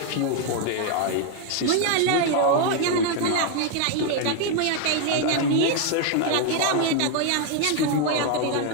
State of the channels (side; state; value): both; different; correlation 0.01